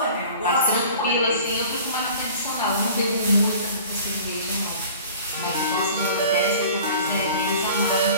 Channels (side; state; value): both; inverted; correlation -0.44